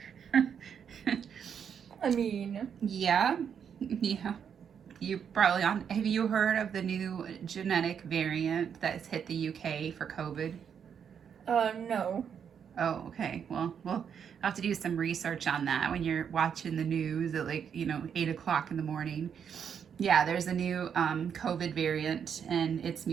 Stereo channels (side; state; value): left; quieter; 7.7 dB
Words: I mean, Yeah, yeah. You probably on. Have you heard of the new genetic variant that's hit the UK for COVID? no. Oh, okay. Well, we'll have to do some research on that when you're watching the news at 8 o'clock in the morning. Yeah, there's a new COVID variant, and it's